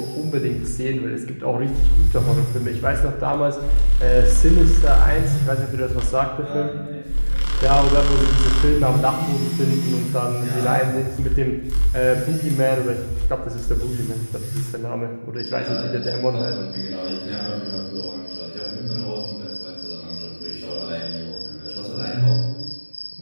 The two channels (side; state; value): both; inverted; correlation -1.00